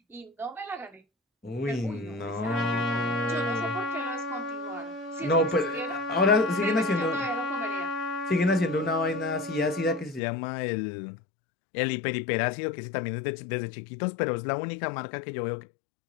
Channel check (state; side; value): drops out; right; at 10.2 s